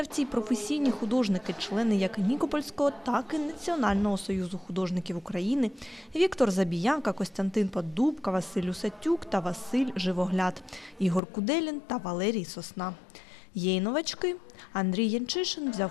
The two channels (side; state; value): right; drops out; at 11.2 s